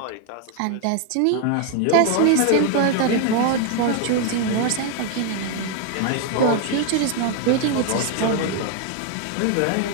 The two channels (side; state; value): both; different; correlation 0.00